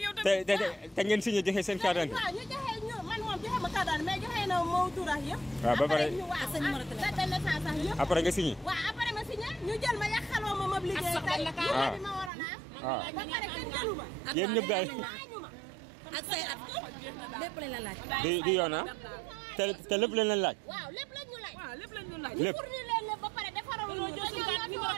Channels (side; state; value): left; drops out; at 12.3 s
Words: yow tamit. te ngeen signé joxe seen carte d'identité. waaw ñu joxe ñu man moom joxe ma carte d'identité mais joxe na moo tuurax yëpp. waaw ba pare date de naissance sax yëpp. après nga signé. waaw après ma signé ñu jël ma yàqaloo ma liggéey tey bi ma waroon a am. ba pare kenn jëlu ma. yéen ñëpp daal ak say at lépp lañ la laaj. di yoon ah te lépp lañ leen laaj. waaw lépp lañ ñu laaj. waaw lépp lañ ñu laaj. lépp pour ñu leen lépp ba pare defaral ñu jël suñu numéro